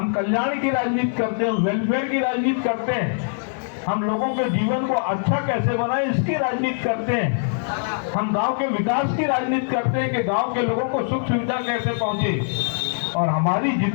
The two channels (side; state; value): right; silent; 61 dB below the other